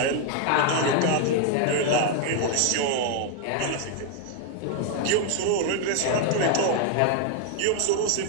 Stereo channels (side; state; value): both; different; correlation 0.01